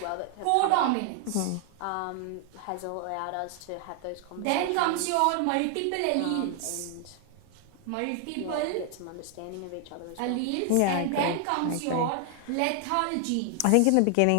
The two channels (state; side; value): different; both; correlation 0.00